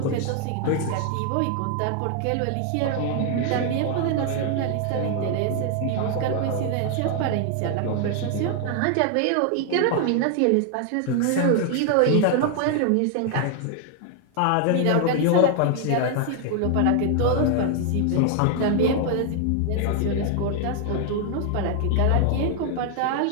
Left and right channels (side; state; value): both; different; correlation 0.00